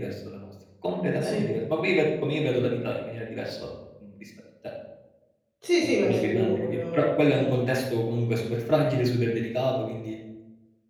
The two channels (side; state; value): both; identical; correlation 1.00